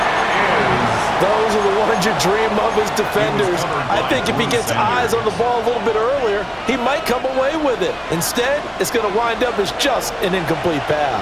Those are the ones you dream of as defenders. I think if he gets eyes on the ball a little bit earlier, he might come away with it. Instead, it's going to wind up as just an incomplete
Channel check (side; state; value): both; identical; correlation 1.00